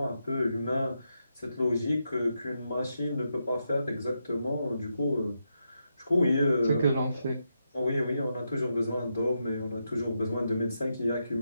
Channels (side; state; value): both; inverted; correlation -0.84